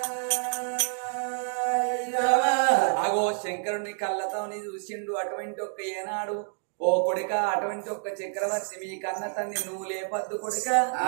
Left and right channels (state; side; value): silent; left; 59 dB below the other